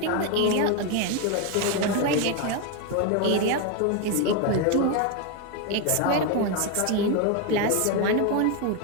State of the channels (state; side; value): different; both; correlation 0.02